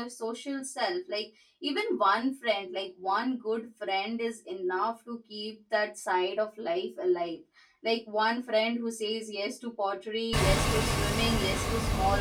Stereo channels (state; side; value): identical; both; correlation 1.00